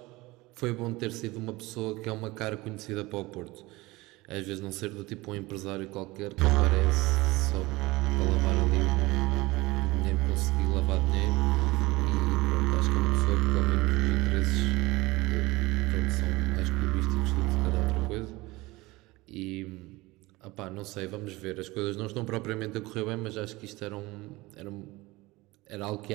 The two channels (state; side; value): quieter; left; 21.1 dB